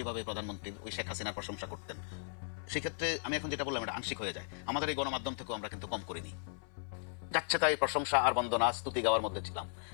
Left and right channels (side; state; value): right; silent; 53 dB below the other